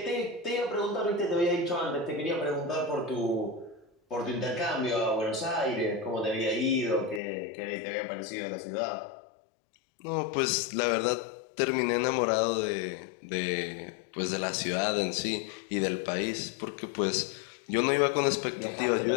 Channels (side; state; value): right; drops out; at 7.2 s